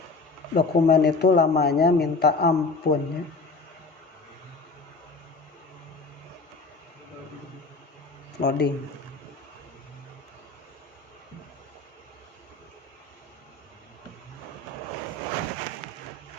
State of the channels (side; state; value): right; quieter; 3.7 dB